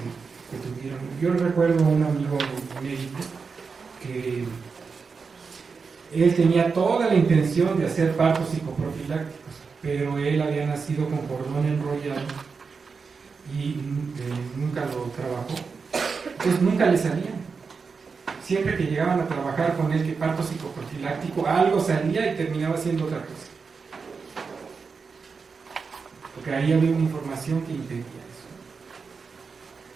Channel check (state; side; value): quieter; left; 5.1 dB